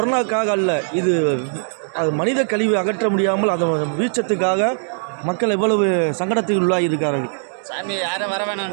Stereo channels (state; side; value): silent; left; digital silence